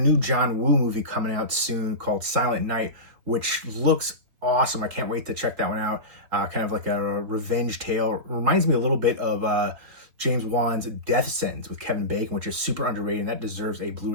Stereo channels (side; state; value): left; late; 4.0 ms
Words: John Woo movie coming out soon called Silent Night, which looks awesome. I can't wait to check that one out. Kind of like a revenge tale. Reminds me a little bit of James Wan's Death Sentence with Kevin Bacon, which is super underrated, and that deserves a